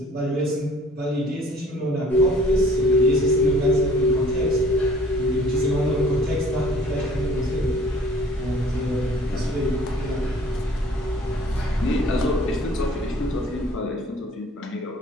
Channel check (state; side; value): normal; both; correlation 0.53